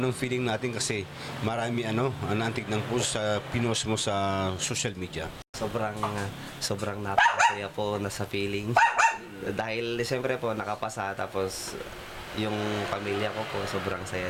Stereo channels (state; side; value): identical; both; correlation 1.00